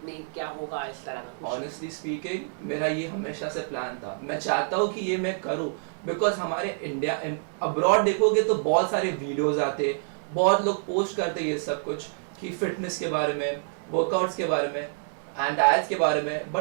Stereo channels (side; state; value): left; silent; digital silence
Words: क्या होगा, इस तरह का? ऑनेस्टली स्पीकिंग, मेरा ये हमेशा से प्लान था। मैं चाहता हूँ कि ये मैं करूँ, बिकॉज हमारे इंडिया अब्रॉड देखोगे तो बहुत सारे वीडियोज आते, बहुत लोग पोस्ट करते ये सब कुछ कि फिटनेस के बारे में, वर्कआउट्स के बारे में एंड डाइट्स के बारे में,